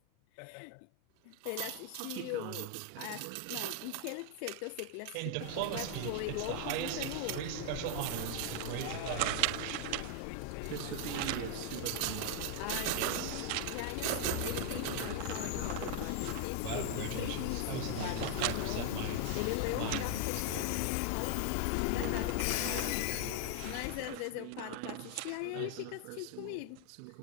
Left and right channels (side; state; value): both; different; correlation 0.00